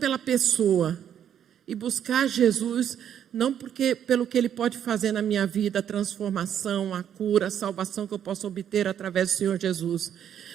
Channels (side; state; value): left; quieter; 9.4 dB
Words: pessoa, e buscar Jesus não pelo que Ele pode fazer na minha vida, a transformação, a cura, a salvação que eu posso obter através do Senhor Jesus,